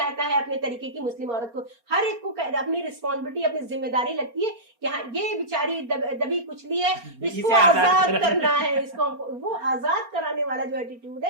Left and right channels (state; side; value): late; left; 4.3 ms